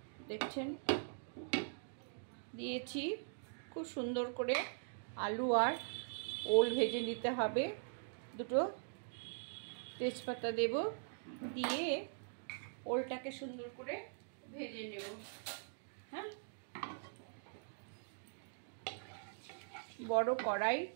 দেখছেন দিয়েছি। খুব সুন্দর করে আলু আর ওল ভেজে নিতে হবে। দুটো তেজপাতা দেব, দিয়ে ওলটাকে সুন্দর করে ভেজে নেব। হ্যাঁ, বড় কড়াই,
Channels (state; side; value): silent; left; digital silence